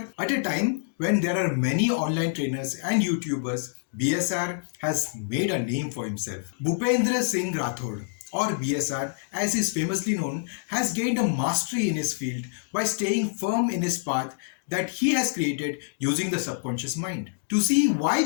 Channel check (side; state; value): right; silent; digital silence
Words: At a time when there are many online trainers and YouTubers, BSR has made a name for himself. Bhupendra Singh Rathore, or BSR as he is famously known, has gained a mastery in his field by staying firm in his path that he has created using the subconscious mind. To see why